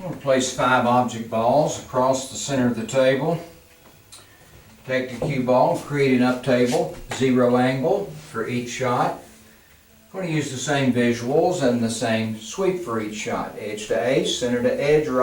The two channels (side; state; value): both; identical; correlation 1.00